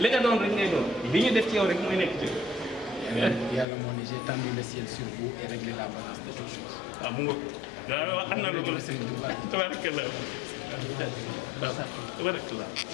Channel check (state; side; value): drops out; right; at 3.7 s